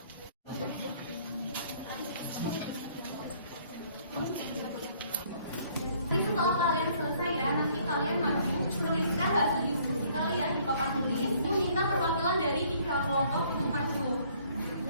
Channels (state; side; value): inverted; both; correlation -0.61